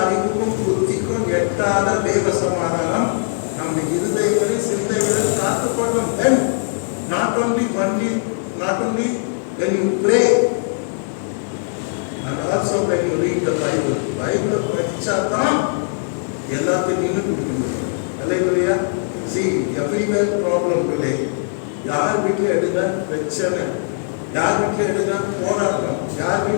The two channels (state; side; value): silent; right; 66 dB below the other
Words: புத்திக்கும் எட்டாத தேவ சமாதானம் நம்ம இருதயங்களில் சிந்தைகளில் காத்துக்கொள்ளும். Then not only when you pray and also when you read the Bible. பைபிளை படிச்சாதான் எல்லாத்தையும் நின்று கொடுக்க முடியும். அல்லேலூயா. See, everywhere problem today. யார் வீட்டில் எடுங்க பிரச்சனை, யார் வீட்டில் எடுங்க போராட்டம், யார்